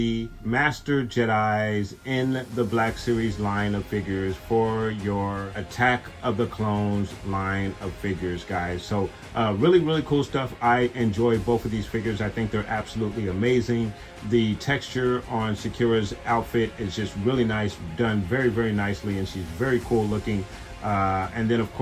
Master Jedis in the Black Series line of figures for your Attack of the Clones line of figures, guys. So really, really cool stuff. I enjoy both of these figures. I think they're absolutely amazing. The texture on Secura's outfit is just really nice, done very, very nicely, and she's very cool looking. And then, of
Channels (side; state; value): both; identical; correlation 1.00